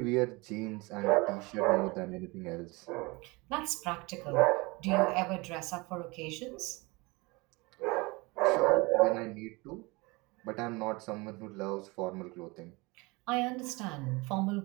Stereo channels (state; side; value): quieter; left; 25.1 dB